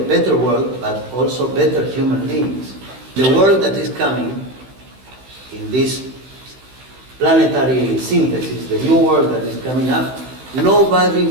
better world, but also better human beings. The world that is coming in this planetary synthesis, the new world that is coming up, nobody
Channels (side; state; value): left; late; 16 ms